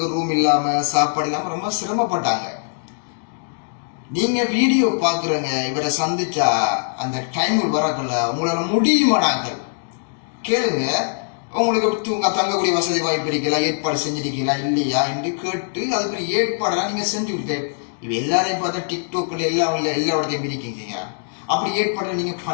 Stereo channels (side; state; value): right; silent; digital silence